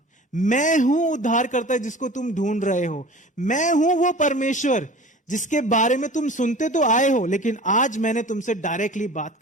मैं हूं उद्धारकर्ता जिसको तुम ढूंढ रहे हो, मैं हूं वो परमेश्वर जिसके बारे में तुम सुनते तो आए हो, लेकिन आज मैंने तुमसे डायरेक्टली बात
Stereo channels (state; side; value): normal; both; correlation 0.41